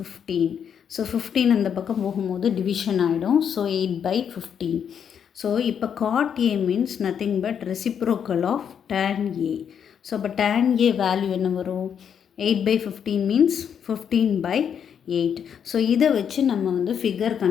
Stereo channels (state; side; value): quieter; right; 8.0 dB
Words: ஸோ 15 அந்த பக்கம் போகும்போது டிவிஷன் ஆகிடும். So 8 by 15. ஸோ இப்போ cot A means nothing but reciprocal of tan A. So அப்போ tan A வேல்யூ என்ன வரும்? 8 by 15 means 15 by 8. ஸோ இதை வச்சு நம்ம வந்து ஃபிகர்